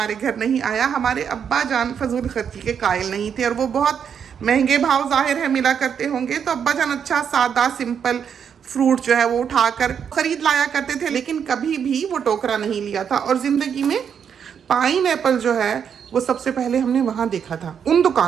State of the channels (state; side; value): quieter; left; 7.6 dB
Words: घर नहीं आया। हमारे अब्बा जान फजूल खर्ची के कायल नहीं थे, और वो बहुत महंगे भाव जाहिर है मिला करते होंगे। तो अब्बा जान अच्छा सादा सिंपल फ्रूट जो है वो उठाकर खरीद लाया करते थे, लेकिन कभी भी वो टोकरा नहीं लिया था। और ज़िंदगी में पाइन एप्पल जो है वो सबसे पहले हमने वहाँ देखा था, उन